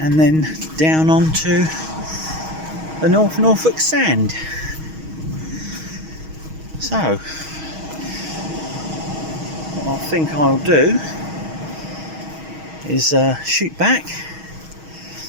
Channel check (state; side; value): late; left; 6.3 ms